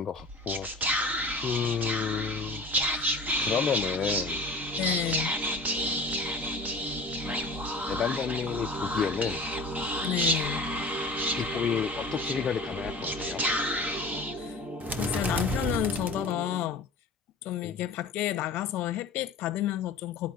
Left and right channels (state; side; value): quieter; right; 3.0 dB